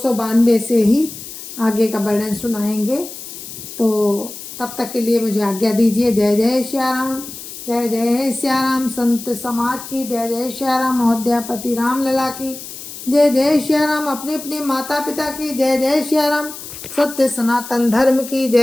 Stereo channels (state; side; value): noise; left; hiss, 12 dB below the sound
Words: से ही आगे का वर्णन सुनाएंगे। तो तब तक के लिए मुझे आज्ञा दीजिए। जय जय श्या राम, जय जय श्या राम। संत समाज की जय जय श्या राम। अयोध्यापति राम लला की जय जय श्या राम। अपने अपने माता पिता की जय जय श्या राम। सत्य सनातन धर्म की